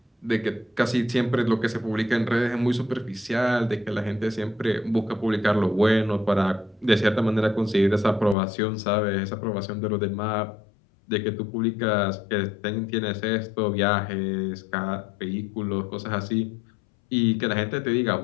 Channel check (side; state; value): right; drops out; at 8.3 s